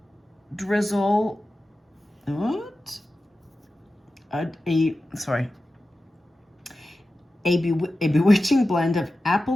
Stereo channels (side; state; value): both; normal; correlation 0.94